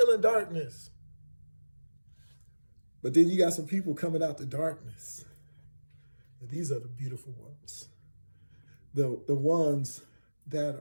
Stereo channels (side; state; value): both; inverted; correlation -1.00